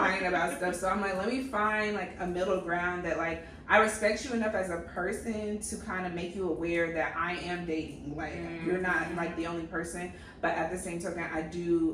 about stuff. So I'm like, let me find like a middle ground that like I respect you enough as a person to kind of make you aware that I am dating. Like you're not like the only person, but at the same token,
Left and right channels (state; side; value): identical; both; correlation 1.00